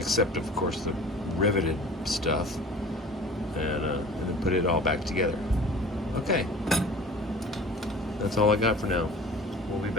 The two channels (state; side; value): normal; both; correlation 0.43